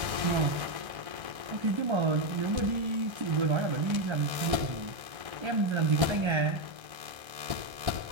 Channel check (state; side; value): late; left; 1.3 ms